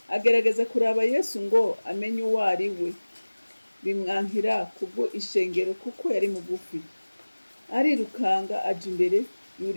Agerageza kuraba Yesu ngo amenye uwo ari we, bimwankira kubwo ishengero kuko yari mugufi. Arirukanga aja imbere,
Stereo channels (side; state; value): both; inverted; correlation -1.00